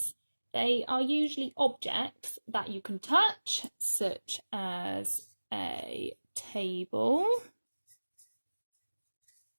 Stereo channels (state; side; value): inverted; both; correlation -1.00